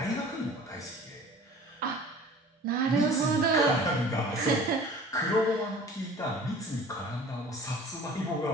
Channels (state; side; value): normal; both; correlation 0.45